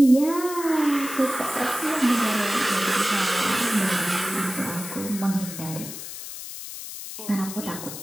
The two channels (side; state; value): left; noise; hiss, 10 dB below the sound